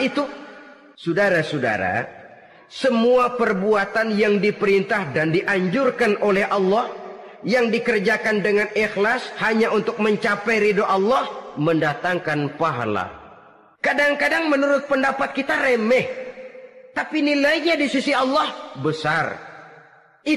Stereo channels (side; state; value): both; identical; correlation 1.00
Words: Saudara-saudara, semua perbuatan yang diperintah dan dianjurkan oleh Allah, yang dikerjakan dengan ikhlas hanya untuk mencapai ridho Allah, mendatangkan pahala. Kadang-kadang menurut pendapat kita remeh, tapi nilainya di sisi Allah besar.